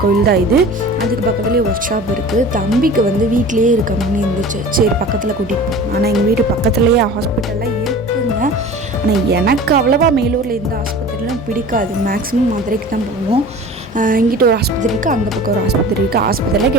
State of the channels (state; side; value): normal; both; correlation 0.40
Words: கோயில் தான் இது. அதுக்கு பக்கத்துலேயே ஒர்க் ஷாப் இருக்குது. தம்பிக்கு வீட்டிலேயே இருக்க மாதிரி இருந்துச்சு. சரி பக்கத்தில் கூட்டிகிட்டு போகணும். ஆனால் எங்கள் வீட்டு பக்கத்துலேயே ஹாஸ்பிட்டல்லாம் இருக்குங்க. ஆனால் எனக்கு அவ்வளோவா மேலூரில் எந்த ஆஸ்பத்திரியிலும் பிடிக்காது. மேக்ஸிமம் மதுரைக்கு தான் போவோம். இங்கிட்ட ஒரு ஆஸ்பத்திரி இருக்குது, அந்த பக்கம் ஒரு ஆஸ்பத்திரி இருக்குது. ஆஸ்பத்திரியில்